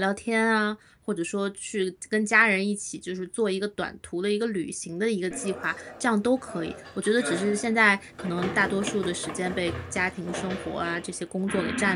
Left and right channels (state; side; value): identical; both; correlation 1.00